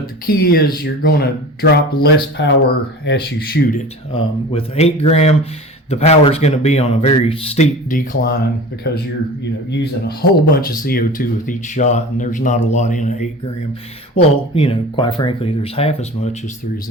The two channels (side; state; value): both; normal; correlation 0.37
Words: the key is you're going to drop less power as you shoot it. With 8 gram, the power is going to be on a very steep decline because you're using a whole bunch of CO2 with each shot, and there's not a lot in an 8 gram. Well, quite frankly, there's half as much as there is